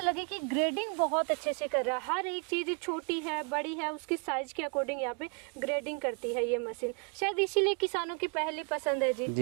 लगी कि ग्रेडिंग बहुत अच्छे से कर रहा है, हर एक चीज़ छोटी है बड़ी है उसकी साइज़ के अकॉर्डिंग यहाँ पे ग्रेडिंग करती है ये मशीन। शायद इसीलिए किसानों की पहली पसंद है जी।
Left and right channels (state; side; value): quieter; left; 35.5 dB